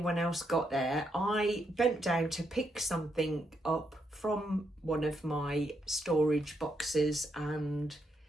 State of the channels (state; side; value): normal; both; correlation 0.79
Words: else got there, I bent down to pick something up from one of my storage boxes, and